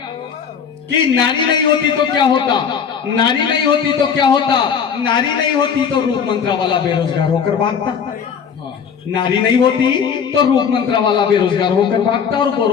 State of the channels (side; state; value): right; quieter; 7.0 dB